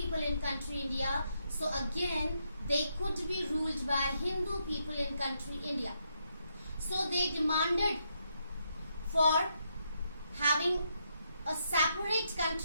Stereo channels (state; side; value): inverted; both; correlation -0.79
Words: in country India, so again they could be ruled by Hindu people in country India. So they demanded for having a separate